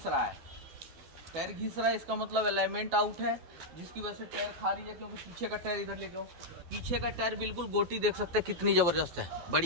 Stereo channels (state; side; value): late; left; 12 ms